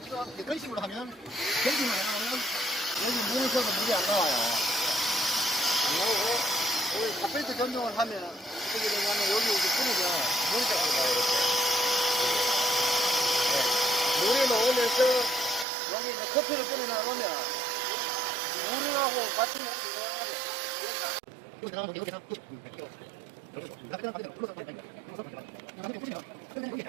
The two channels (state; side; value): drops out; left; at 15.7 s